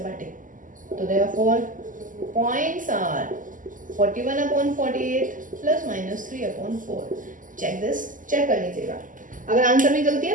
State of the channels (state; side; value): late; left; 0.38 ms